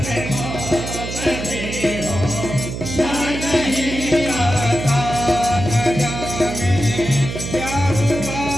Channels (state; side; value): noise; right; hum, 6 dB below the sound